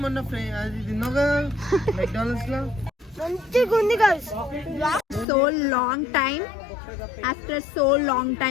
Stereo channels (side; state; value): right; drops out; at 5.2 s